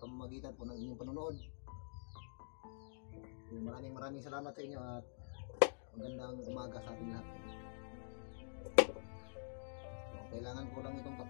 pamamagitan po ng inyong panonood. Maraming salamat sa inyo at magandang umaga sa ating lahat. Kailangan ko lang itong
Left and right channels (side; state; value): right; silent; digital silence